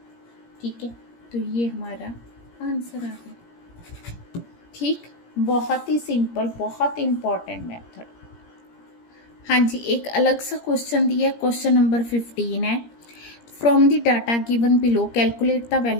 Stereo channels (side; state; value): right; late; 17 ms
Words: ठीक है। तो ये हमारा आंसर आ गया। ठीक, बहुत ही सिंपल, बहुत इम्पॉर्टेंट मेथड। हाँ जी, एक अलग सा क्वेश्चन दिया है, क्वेश्चन नंबर 15 है। From the data given below calculate the